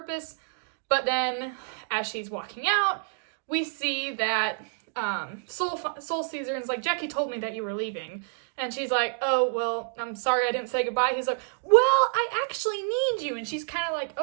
But then, as she's walking out, we see that Soul sees her and is like, Jackie told me that you were leaving. And she's like, oh, well, I'm sorry I didn't say goodbye. He's like, well, I actually need you. And she's kind of like,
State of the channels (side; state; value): left; silent; digital silence